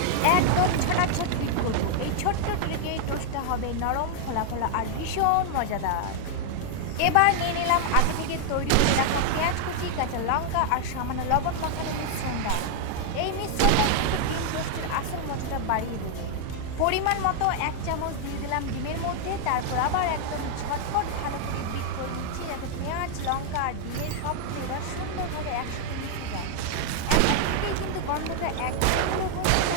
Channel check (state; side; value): different; both; correlation 0.00